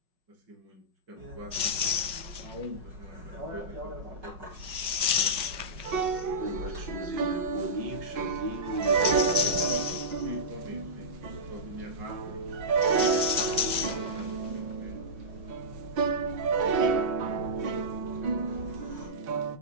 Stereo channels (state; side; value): late; left; 5.4 ms